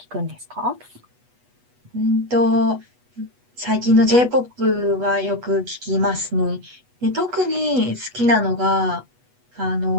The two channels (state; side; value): late; left; 8.2 ms